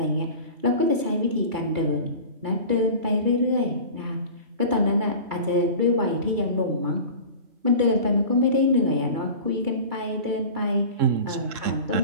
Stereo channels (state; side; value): late; left; 2.3 ms